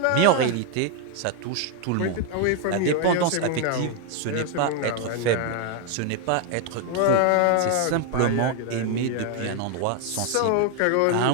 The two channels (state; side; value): different; both; correlation 0.01